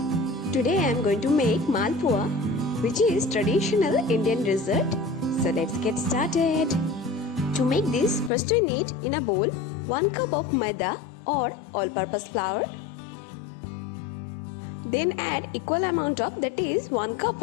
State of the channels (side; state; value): right; drops out; at 8.3 s